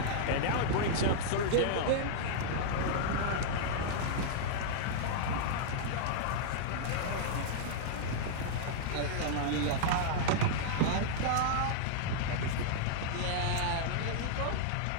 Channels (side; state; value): both; different; correlation -0.02